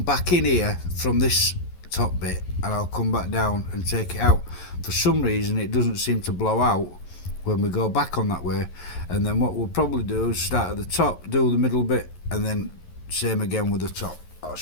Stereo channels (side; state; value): right; late; 11 ms